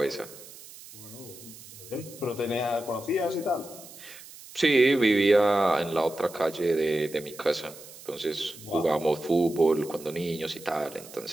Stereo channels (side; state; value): right; noise; hiss, 17 dB below the sound